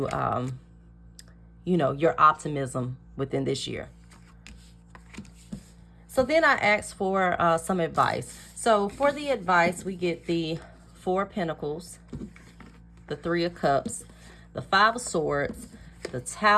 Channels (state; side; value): identical; both; correlation 1.00